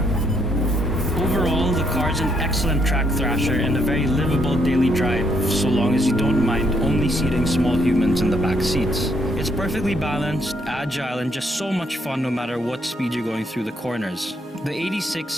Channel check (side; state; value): both; normal; correlation 0.72